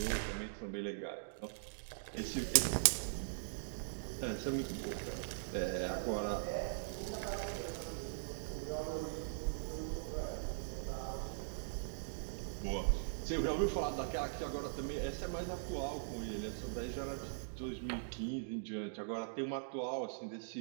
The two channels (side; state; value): left; silent; digital silence